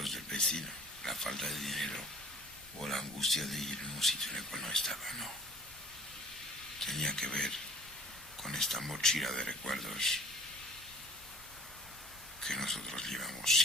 del vecino, la falta de dinero, o la angustia de ir en un sitio en el cual no estaba, no. Tenía que ver con esta mochila de recuerdos que nosotros llevamos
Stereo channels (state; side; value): normal; both; correlation 0.49